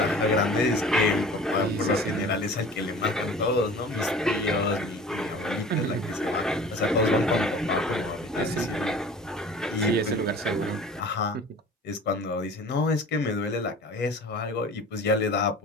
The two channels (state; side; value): normal; both; correlation 0.43